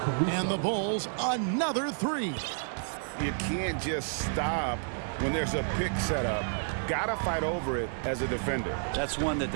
And the Bulls another 3. You can't just stop when there's a pick set up. Gotta fight over it as a defender. That's one that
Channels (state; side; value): silent; left; 58 dB below the other